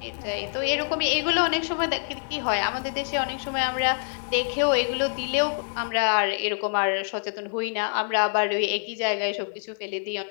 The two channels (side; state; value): right; silent; 58 dB below the other